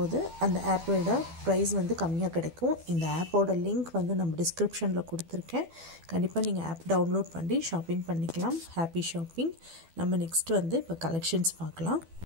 அந்த ஆப்போட ப்ரைஸ் வந்து கம்மியாக கிடைக்கும். இந்த ஆப்போட லிங்க் வந்து நம்ம டிஸ்கிரிப்ஷனில் கொடுத்துருக்கேன். கண்டிப்பாக நீங்கள் ஆப் டவுன்லோட் பண்ணி ஷாப்பிங் பண்ணிக்கலாம். Happy shopping. நம்ம நெக்ஸ்ட் வந்து இப்போ கலெக்ஷன்ஸ் பார்க்கலாம்.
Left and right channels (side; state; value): left; late; 12 ms